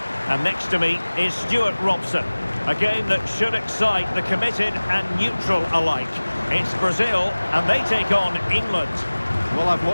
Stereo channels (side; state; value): both; inverted; correlation -1.00